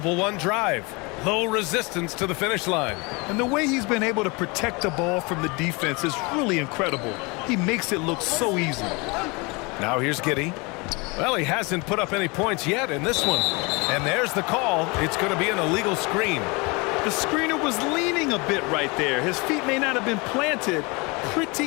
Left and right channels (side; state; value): right; quieter; 27.5 dB